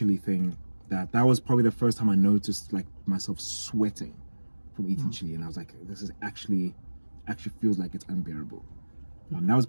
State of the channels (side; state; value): both; inverted; correlation -1.00